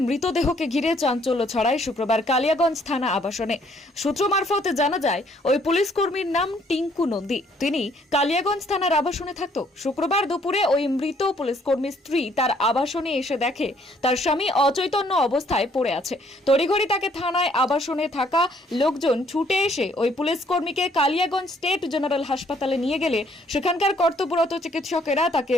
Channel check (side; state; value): both; normal; correlation 0.65